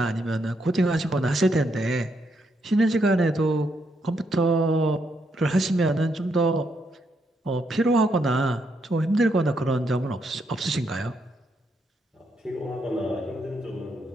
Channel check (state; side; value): normal; both; correlation 0.78